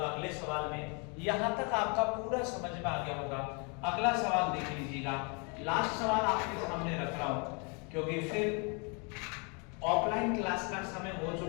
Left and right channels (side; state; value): right; quieter; 33.9 dB